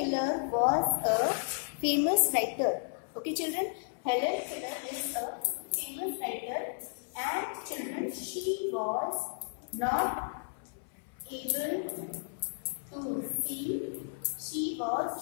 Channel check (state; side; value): silent; right; 56 dB below the other